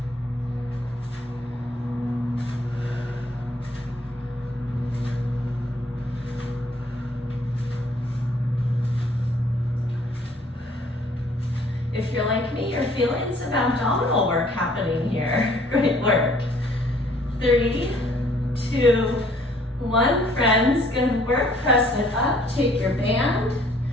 If you're like me, you're feeling some abdominal work happening here. Great work. 3, 2, 1, friends. Good work. Press it up. Take your band.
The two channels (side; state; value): both; normal; correlation 0.60